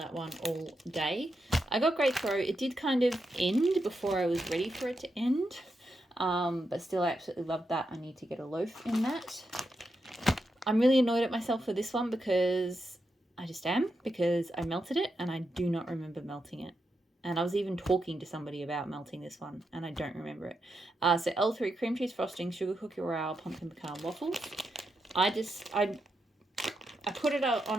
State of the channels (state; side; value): normal; both; correlation 0.85